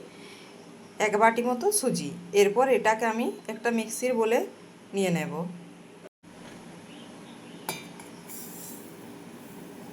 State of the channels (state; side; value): identical; both; correlation 1.00